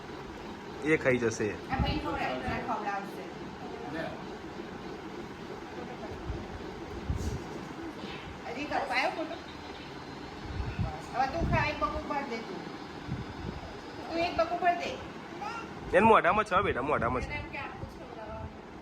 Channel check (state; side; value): identical; both; correlation 1.00